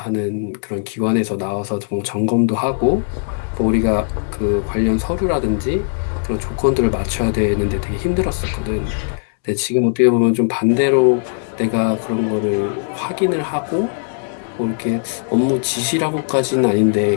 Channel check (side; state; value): right; silent; 67 dB below the other